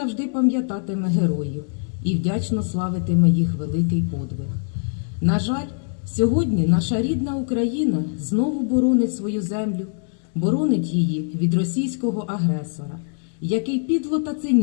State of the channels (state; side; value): silent; right; 64 dB below the other